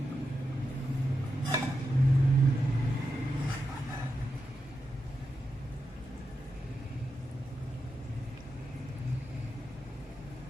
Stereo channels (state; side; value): normal; both; correlation 0.87